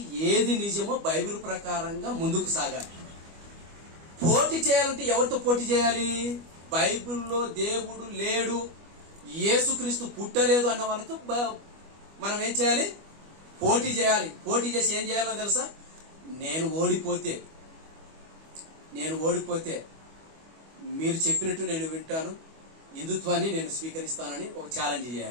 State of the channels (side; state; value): left; late; 25 ms